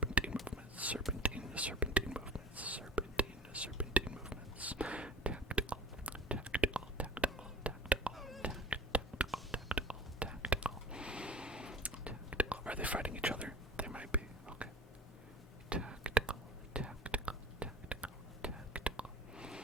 movements. Tactical. Are they fighting each other? They might be. Okay. Tactical.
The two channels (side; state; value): both; normal; correlation 0.42